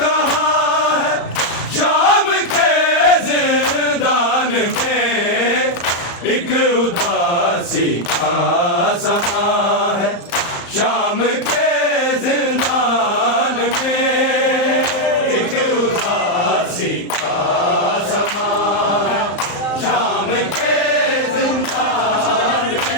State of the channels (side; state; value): right; late; 35 ms